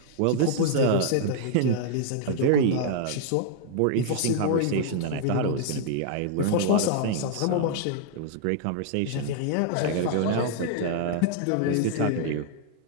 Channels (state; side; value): different; both; correlation -0.01